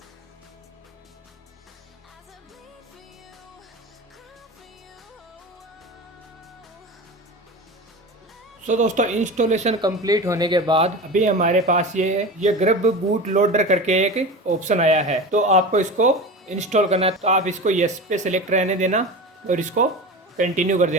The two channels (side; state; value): both; normal; correlation 0.29